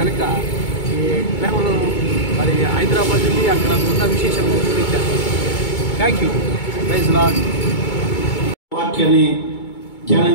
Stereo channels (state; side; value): late; right; 2.2 ms